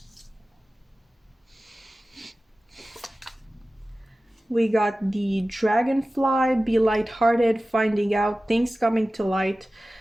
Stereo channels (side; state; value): both; normal; correlation 0.96